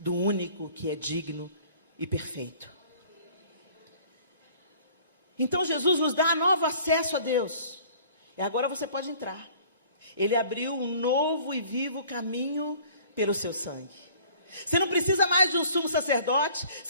único que é digno e perfeito. Então Jesus nos dá novo acesso a Deus. E agora você pode entrar. Ele abriu um novo e vivo caminho pelo seu sangue. Você não precisa mais de um sumo sacerdote.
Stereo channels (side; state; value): both; inverted; correlation -0.51